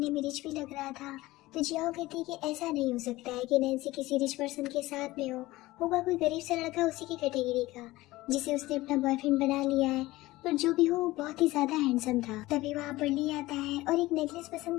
में रिच भी लग रहा था। तो जियाओ कहती है कि ऐसा नहीं हो सकता है कि नैन्सी किसी रिच पर्सन के साथ में होगा कोई गरीब सा लड़का उसी की कैटेगरी का जिसे उसने अपना बॉयफ्रेंड बना लिया है, पर जो भी हो वो बहुत ही ज्यादा हैंडसम था। तभी वहाँ पर ली आता है और एक नेकलेस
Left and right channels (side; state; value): right; quieter; 18.5 dB